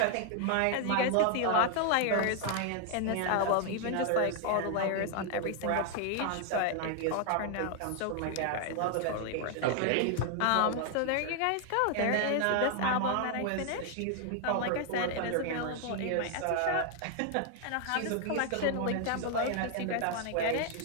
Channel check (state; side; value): different; both; correlation 0.00